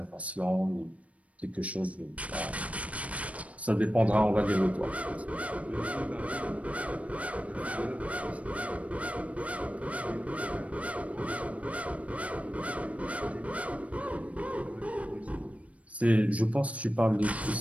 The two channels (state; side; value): late; left; 0.065 ms